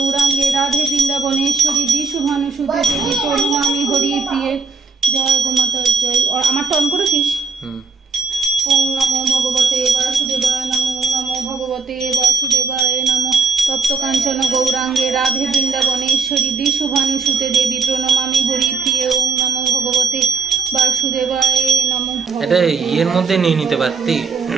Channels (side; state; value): left; quieter; 4.4 dB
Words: ভগবতে বাসুদেবায় নমো নমো ভগবতে বাসুদেবায় নমো তপ্ত কাঞ্চন গৌরাঙ্গে রাধে বৃন্দাবনেশ্বরী বৃষভানুসুতে দেবী প্রণমামি হরিপ্রিয়ে ওং নমো ভগবতে বাসুদেবায় নমো। এটা ইয়ের মধ্যে নিয়ে নিতে পারতি